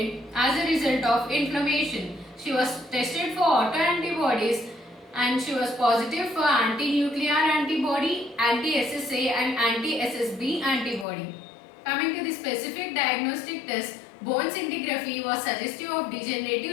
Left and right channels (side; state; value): right; drops out; at 11.1 s